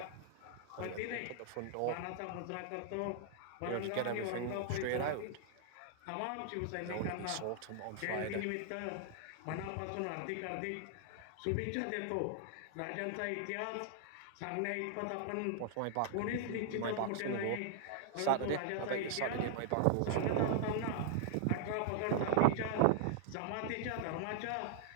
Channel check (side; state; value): both; different; correlation -0.01